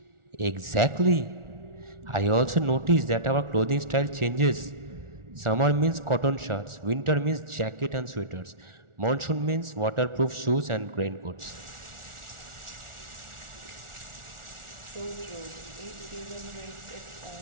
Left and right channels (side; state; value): left; late; 1.4 ms